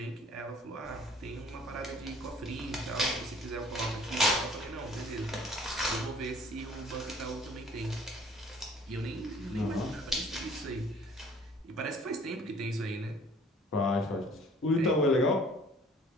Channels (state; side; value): normal; both; correlation 0.54